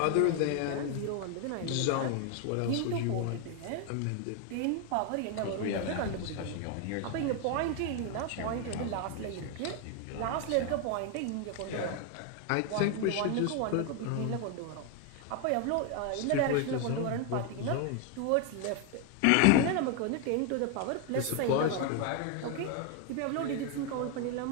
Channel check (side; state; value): both; different; correlation 0.01